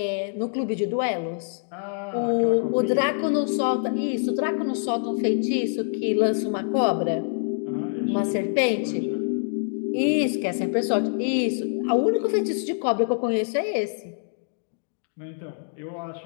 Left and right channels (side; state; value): right; silent; digital silence